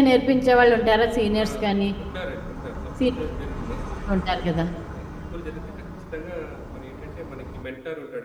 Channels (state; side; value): identical; both; correlation 1.00